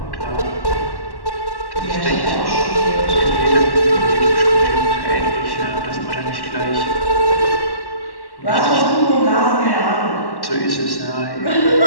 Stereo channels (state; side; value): late; right; 1.1 ms